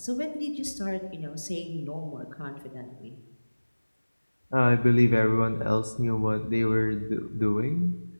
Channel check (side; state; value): both; inverted; correlation -1.00